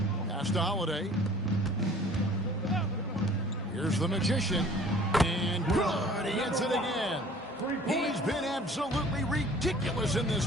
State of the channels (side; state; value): both; normal; correlation 0.50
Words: Pass to Holiday. Here's the Magician. And good. He hits it again. He's been absolutely ridiculous in this